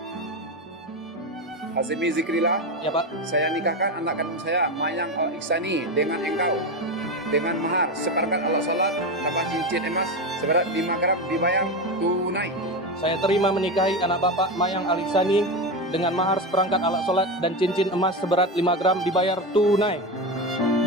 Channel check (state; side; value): normal; both; correlation 0.17